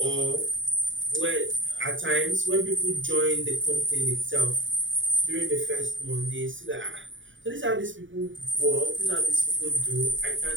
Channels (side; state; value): left; late; 0.56 ms